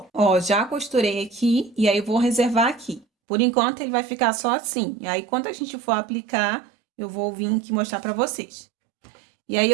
Ó, já costurei aqui e aí eu vou reservar aqui. Por enquanto, ele vai ficar só assim. E aí, quando a gente for aplicar, eu vou vir aqui mostrar pra vocês. E aí,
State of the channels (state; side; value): drops out; left; at 3.1 s